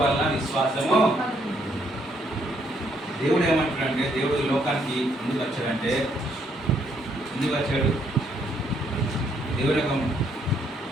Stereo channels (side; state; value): both; normal; correlation 0.71